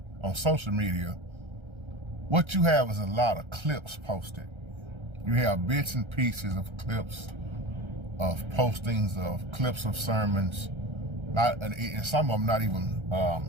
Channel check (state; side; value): late; left; 1.3 ms